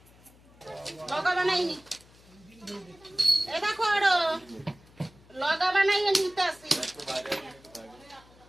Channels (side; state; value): left; noise; hum, 26 dB below the sound